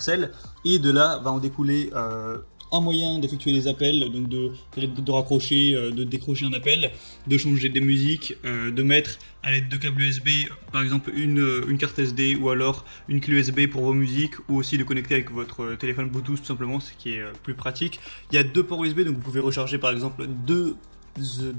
et de là va en découler un moyen d'effectuer des appels, donc de raccrocher, de décrocher un appel, de changer des musiques, de mettre à l'aide de câbles USB par exemple une carte SD ou alors une clé USB pour vos musiques, ou aussi de connecter avec votre téléphone Bluetooth tout simplement, ce qui est plus pratique. Il y a deux ports USB, donc vous pouvez recharger par exemple deux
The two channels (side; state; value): both; inverted; correlation -1.00